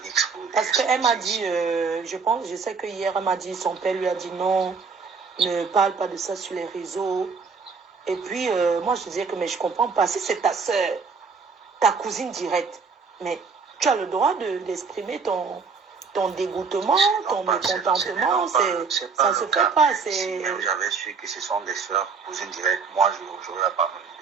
exposer. Parce qu'elle m'a dit, je sais que hier, elle m'a dit, son père lui a dit non, ne parle pas de ça sur les réseaux. Et puis, moi, je disais que, mais je ne comprends pas. Si c'est ta soeur, ta cousine directe, mais tu as le droit d'exprimer ton dégoûtement, ton mécontentement. Ça ne se fait pas. Si j'avais su que ce sont des soeurs, cousines directes, moi, je n'aurais pas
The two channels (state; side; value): quieter; left; 5.2 dB